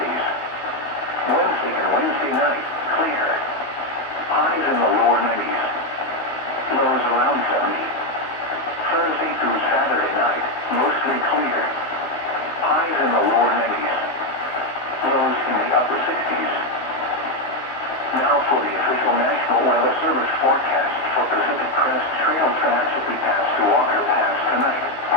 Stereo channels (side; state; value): right; late; 15 ms